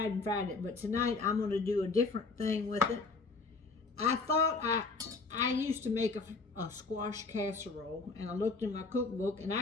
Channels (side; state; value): right; quieter; 4.0 dB